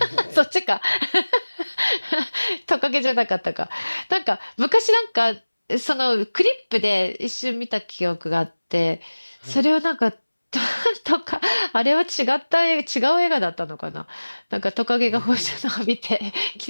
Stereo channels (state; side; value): inverted; both; correlation -1.00